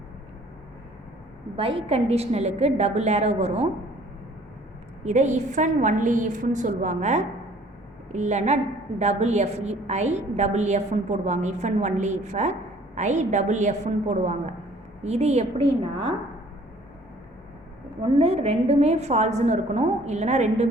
பை கண்டிஷ்னலுக்கு டபுள் ஏரோ வரும். இதை இஃப் அண்ட் ஒன்லி இஃப்னு சொல்லுவாங்க, இல்லைன்னா டபுள் எஃப், ஐ டபுள் எஃப்னு போடுவாங்க. If and only if I double எஃப்னு போடுவாங்க. இது எப்படின்னா ஒன்று ரெண்டுமே ஃபால்ஸ்னு இருக்கணும், இல்லைனா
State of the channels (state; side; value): normal; both; correlation 0.55